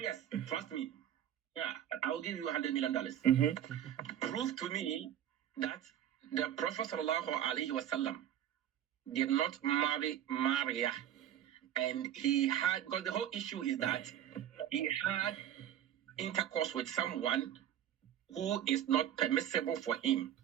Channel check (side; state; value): left; quieter; 10.7 dB